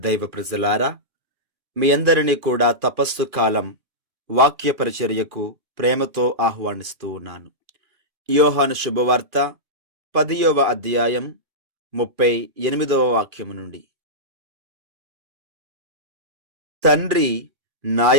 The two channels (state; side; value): late; left; 2.4 ms